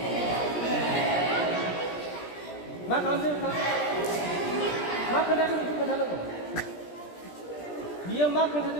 Mak kalau dia mak kena tu itu kena lagu. Dia mak kena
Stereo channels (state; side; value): late; right; 17 ms